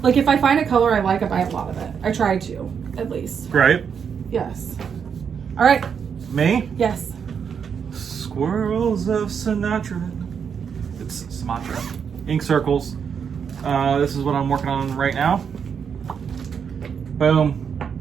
Like if I find a color I like, I buy a lot of it. I try to, at least. Right. Yes. All right. Me? Yes. Squirrels of Sinatra. It's Sumatra. Ink circles. This is what I'm working on right now. Boom.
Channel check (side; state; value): left; quieter; 7.0 dB